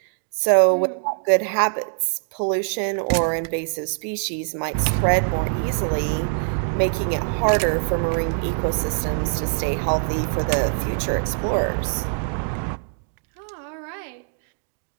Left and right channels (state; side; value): silent; left; digital silence